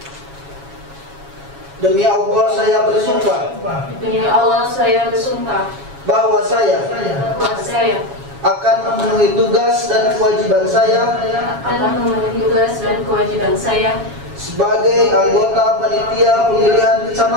Demi Allah saya bersumpah. Demi Allah saya bersumpah Bahwa saya akan memenuhi tugas dan kewajiban saya sebagai anggota panitia pemilihan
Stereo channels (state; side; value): late; left; 7.2 ms